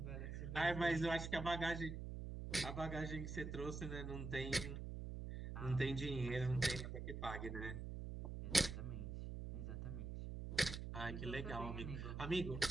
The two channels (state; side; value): noise; right; hum, 5 dB below the sound